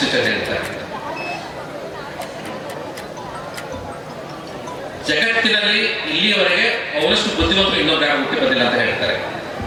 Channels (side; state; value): both; identical; correlation 1.00